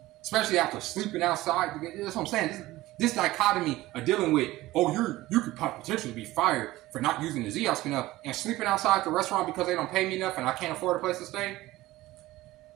Especially after sleeping outside. That's what I'm saying. This dichotomy of dealing with, you could potentially be fired for not using the ZOS enough and sleeping outside the restaurant because they don't pay me enough and I can't afford a place to stay.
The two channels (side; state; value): left; quieter; 17.5 dB